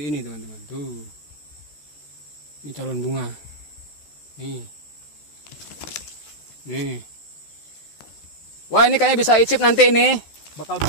ini teman-teman. Tuh, ini calon bunga. Nih, wah ini kayaknya bisa icip nanti ini. Bakal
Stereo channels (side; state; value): right; late; 14 ms